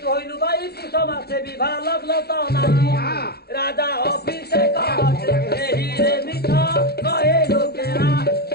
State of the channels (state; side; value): late; right; 0.46 ms